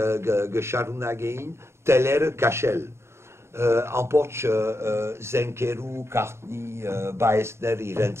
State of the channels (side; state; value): left; late; 0.13 ms